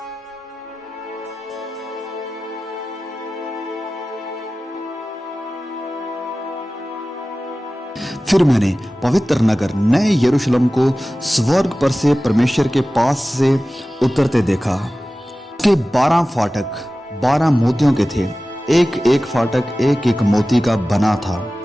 फिर मैंने पवित्र नगर नए यरूशलेम को स्वर्ग पर से परमेश्वर के पास से उतरते देखा। उसके 12 फाटक 12 मोतियों के थे, एक एक फाटक एक एक मोती का बना था,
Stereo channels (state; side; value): normal; both; correlation 0.96